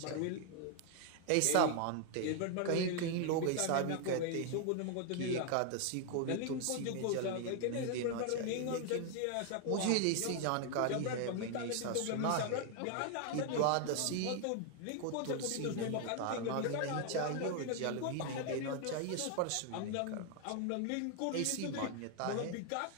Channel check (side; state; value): both; different; correlation 0.00